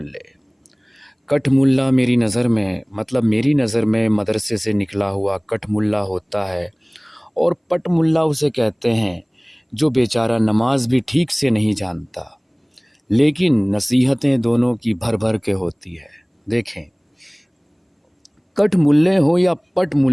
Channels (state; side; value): identical; both; correlation 1.00